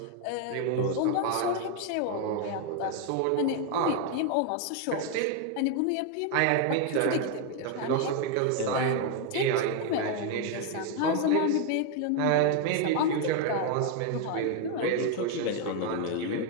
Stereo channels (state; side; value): different; both; correlation 0.01